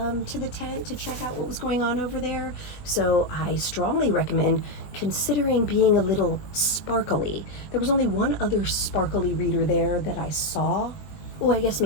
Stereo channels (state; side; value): late; right; 20 ms